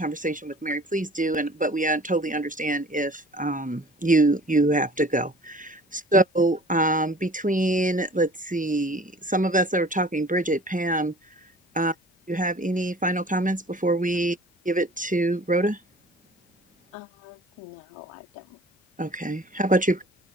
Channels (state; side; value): normal; both; correlation 0.47